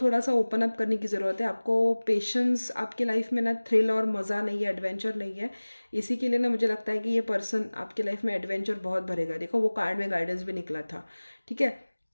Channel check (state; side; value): inverted; both; correlation -1.00